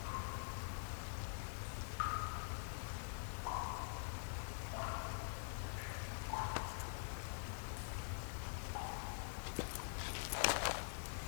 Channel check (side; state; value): right; silent; digital silence